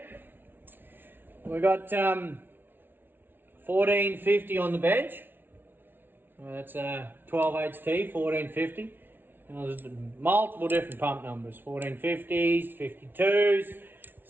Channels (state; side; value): late; left; 0.10 ms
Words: we got 1450 on the bench. That's 12 HT, 1450. And there's multiple different pump numbers: 1450s, 52s,